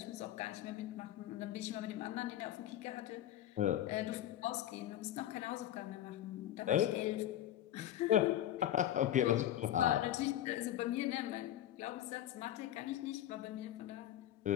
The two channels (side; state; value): right; quieter; 12.3 dB